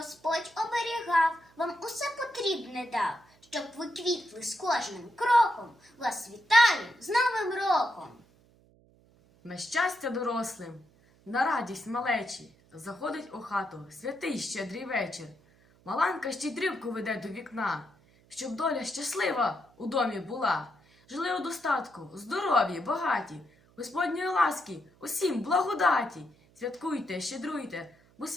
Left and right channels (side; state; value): right; noise; hum, 30 dB below the sound